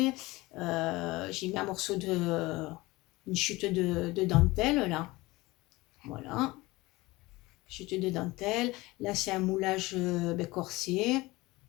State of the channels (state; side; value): quieter; right; 21.1 dB